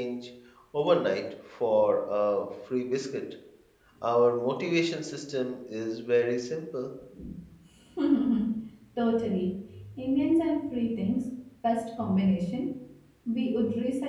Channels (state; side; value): identical; both; correlation 1.00